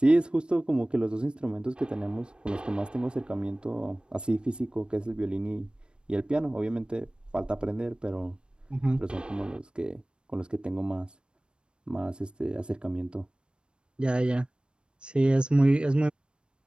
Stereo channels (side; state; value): left; late; 0.054 ms